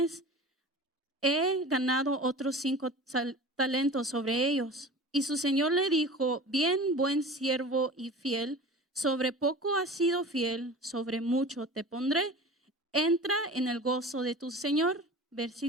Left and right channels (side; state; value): both; normal; correlation 0.37